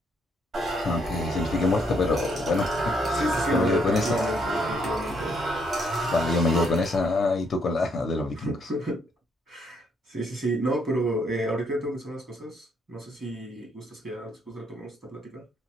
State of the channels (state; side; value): normal; both; correlation 0.72